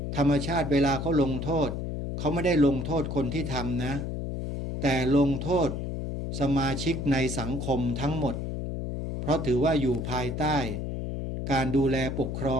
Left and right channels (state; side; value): noise; left; hum, 4 dB below the sound